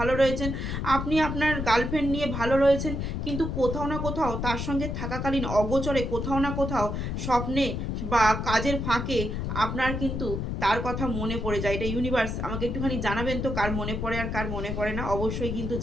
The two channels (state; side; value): noise; left; rumble, 3 dB below the sound